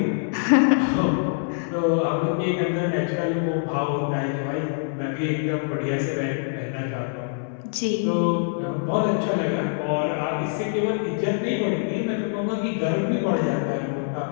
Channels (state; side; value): silent; right; digital silence